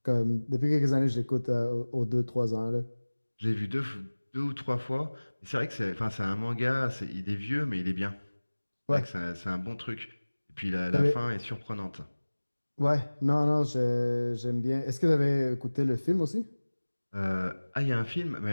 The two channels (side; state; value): both; inverted; correlation -1.00